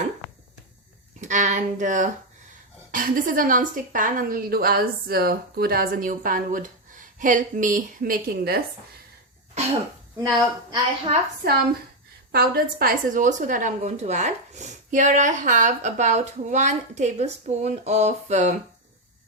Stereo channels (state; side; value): normal; both; correlation 0.05